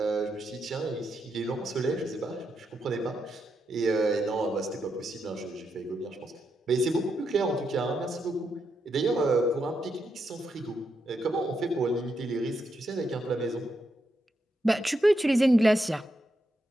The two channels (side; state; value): both; normal; correlation 0.82